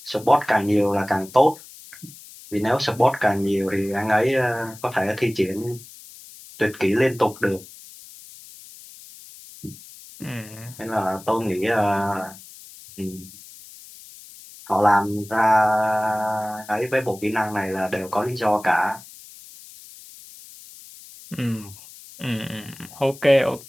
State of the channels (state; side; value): noise; left; hiss, 19 dB below the sound